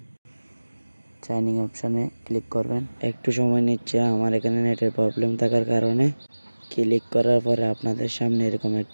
সাইন ইন অপশনে ক্লিক করবেন। একটু সময় নিচ্ছে, আমার এখানে নেটের প্রবলেম থাকার কারণে। ক্লিক করার পরে আপনাদের সামনে এরকম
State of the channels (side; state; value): both; inverted; correlation -1.00